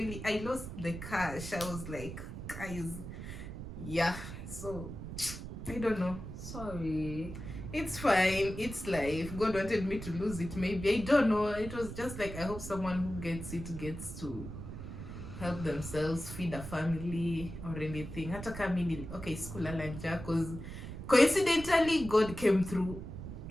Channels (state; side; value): noise; right; rumble, 9 dB below the sound